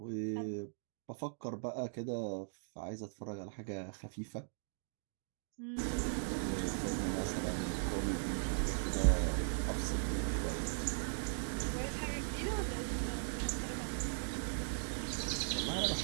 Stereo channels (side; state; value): left; silent; digital silence